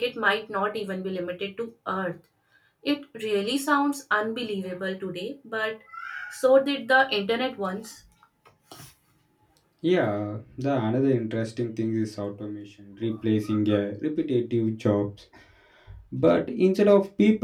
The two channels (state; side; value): identical; both; correlation 1.00